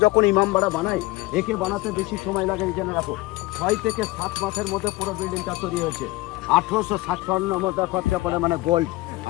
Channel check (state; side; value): quieter; right; 20.5 dB